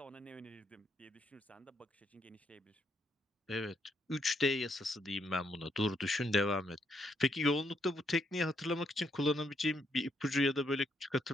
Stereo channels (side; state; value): both; normal; correlation 0.75